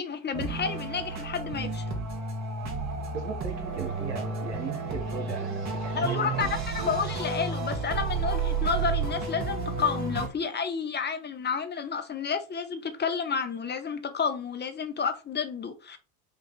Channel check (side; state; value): both; normal; correlation 0.01